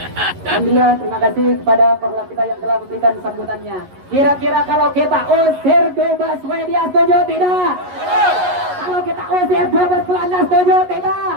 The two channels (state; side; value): late; left; 11 ms